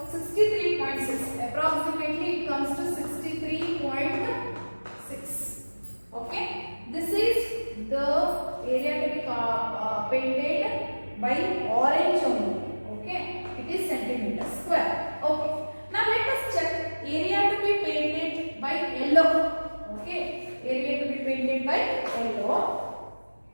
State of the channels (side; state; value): both; inverted; correlation -1.00